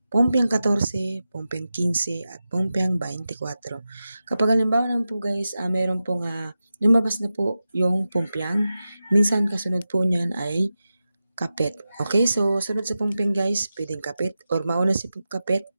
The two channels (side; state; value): both; inverted; correlation -0.92